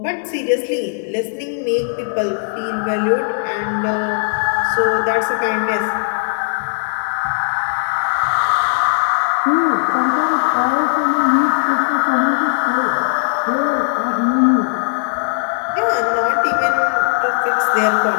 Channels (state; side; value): silent; right; 68 dB below the other